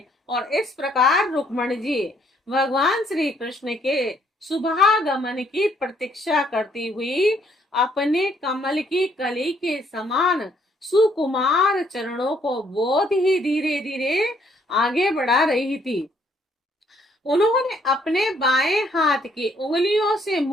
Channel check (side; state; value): both; normal; correlation 0.67